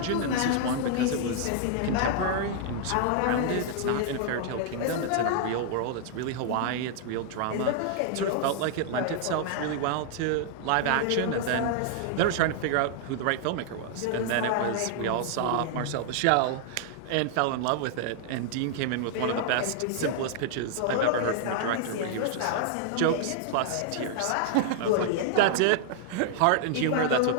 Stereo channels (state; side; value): different; both; correlation -0.01